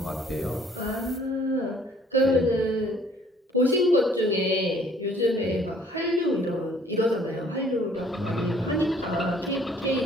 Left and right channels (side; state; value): both; normal; correlation 0.58